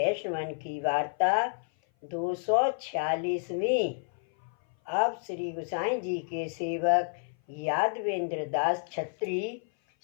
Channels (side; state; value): right; silent; 56 dB below the other